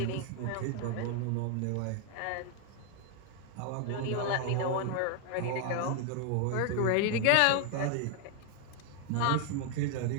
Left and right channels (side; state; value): both; different; correlation 0.00